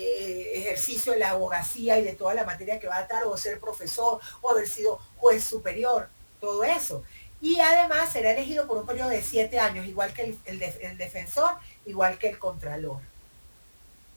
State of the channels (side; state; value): both; inverted; correlation -1.00